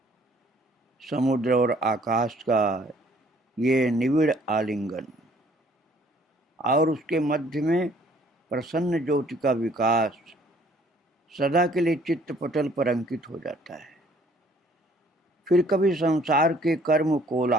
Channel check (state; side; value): normal; both; correlation 0.59